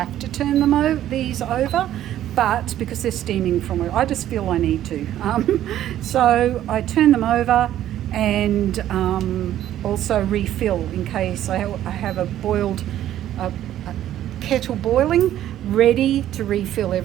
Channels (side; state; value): left; quieter; 12.2 dB